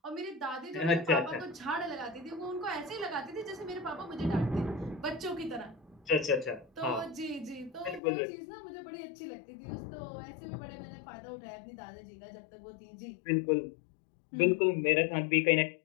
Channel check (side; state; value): right; drops out; at 8.0 s